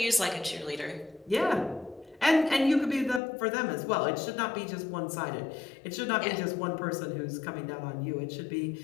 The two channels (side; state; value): right; drops out; at 3.2 s